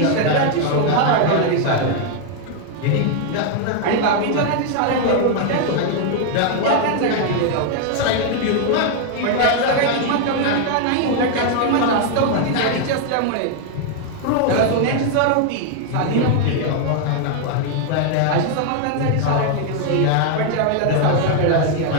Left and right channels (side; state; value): both; different; correlation 0.00